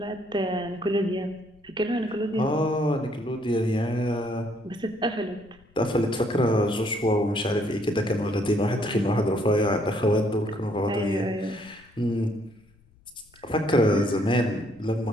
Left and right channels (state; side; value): noise; left; rumble, 30 dB below the sound